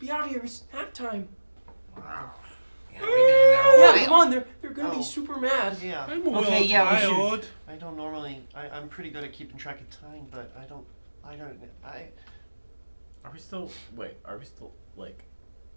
out here. It's nap time. Wow. Yeah, come on. They're gonna be super mad. Yeah. I'm a Okay, little yeah, we tired. I don't normally. I'm pretty good at keeping track of time, but I Are we still like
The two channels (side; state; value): both; inverted; correlation -1.00